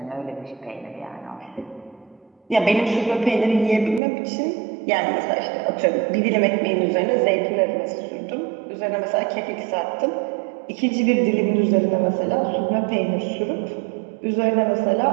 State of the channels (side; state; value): left; drops out; at 4.0 s